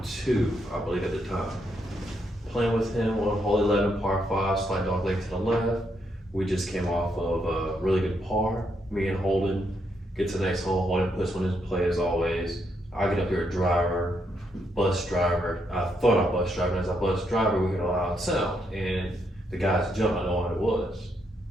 2, I believe at the time. Playing with him on hole 11, par 5, slight dog leg to the left. We just came off of a really good par. Me and Holden get to the next hole. Holden puts one in play as always. I get up here a driver, bus driver. I thought I bus driver, and as I bus driver, we get a loud sound. And the guys jump, I know what it was.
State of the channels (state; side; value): normal; both; correlation 0.78